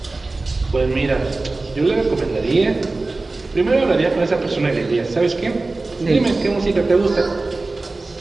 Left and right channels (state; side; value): quieter; left; 3.3 dB